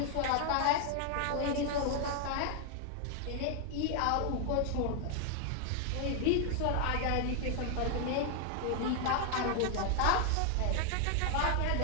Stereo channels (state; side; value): different; both; correlation 0.00